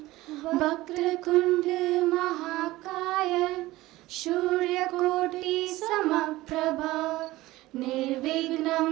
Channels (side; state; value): left; quieter; 18.1 dB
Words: वक्रतुंड महाकाय सूर्यकोटि समप्रभा निर्विघ्नं